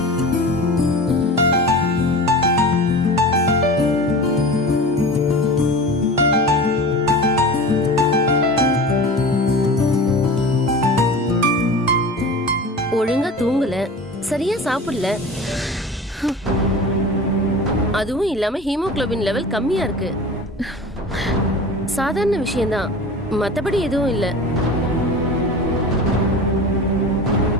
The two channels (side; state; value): both; normal; correlation 0.34